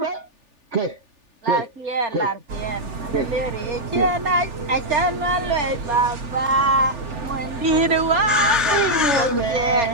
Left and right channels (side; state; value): left; late; 3.4 ms